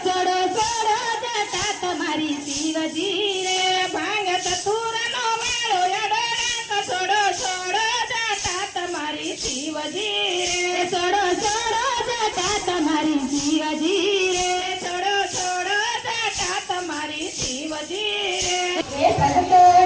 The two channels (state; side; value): identical; both; correlation 1.00